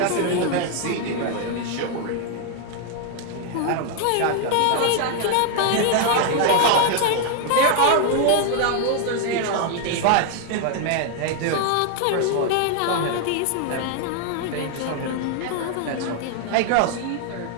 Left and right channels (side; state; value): both; different; correlation 0.00